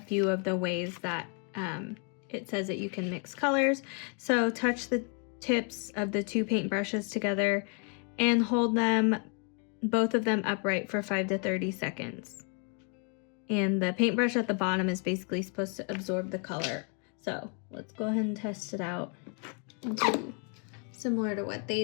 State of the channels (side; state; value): right; quieter; 38.7 dB